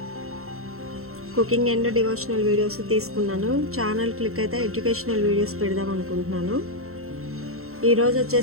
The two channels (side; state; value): left; late; 0.63 ms